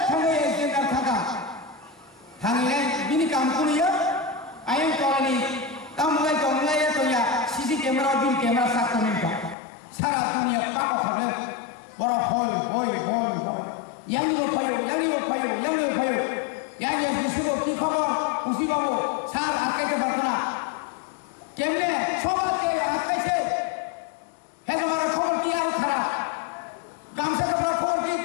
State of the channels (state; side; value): drops out; right; at 9.6 s